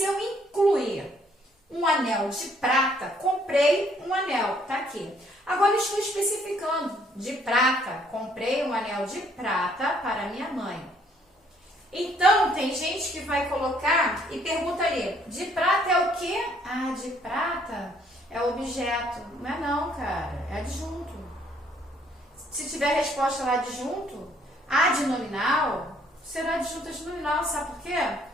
eu incluir um anel de prata, comprei um anel, tá aqui. Agora estou especificando, de prata, comprei um anel de prata para minha mãe. Então, tem gente que vai colocar e pergunta ali, de prata é o quê? Ah, de prata é objeto. Não é não, cara, é adjunto. Se tiver resposta lá adjunto, adnominal, será adjunto adnominal, sabe por quê?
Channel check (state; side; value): normal; both; correlation 0.65